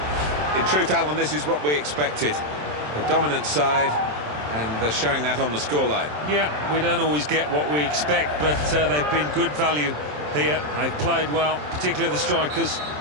In truth, Alan, this is what we expected. The dominant side, and they're showing that on the scoreline. Yeah, we don't always get what we expect, but they've been good value here. They've played well, particularly the strikers.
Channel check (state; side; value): late; left; 27 ms